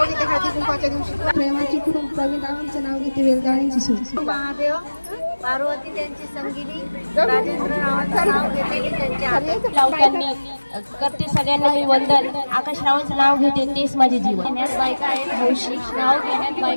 घेते हळदी कुंकवाच्या दिवशी प्रेमाची खूप प्रवीणरावांचं नाव घेते वेलदाण्याची सूज महादेव पार्वती त्यांची संगिनी राजेंद्र रावांचं नाव घेते त्यांची करते सगळ्यांना मी वंदन आकाश रावांचं नाव घेते तेच माझे जीवन घेण्यात बायका आहेत हौशी नाव घेण्यात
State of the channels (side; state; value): both; inverted; correlation -1.00